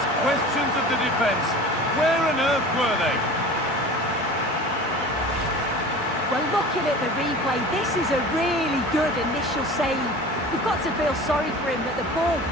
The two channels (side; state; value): both; normal; correlation 0.38